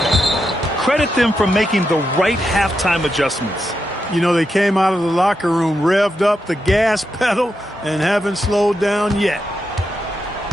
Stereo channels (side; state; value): both; normal; correlation 0.85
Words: Credit them for making the right halftime adjustments. You know, they came out of the locker room, revved up the gas pedal, and haven't slowed down yet.